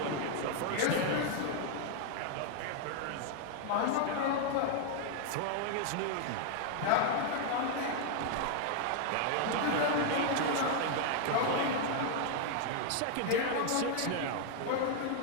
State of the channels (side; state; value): both; different; correlation 0.00